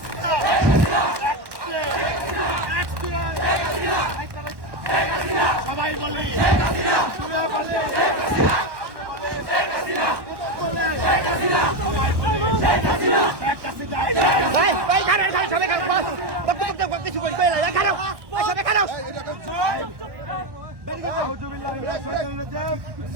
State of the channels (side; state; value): left; late; 1.1 ms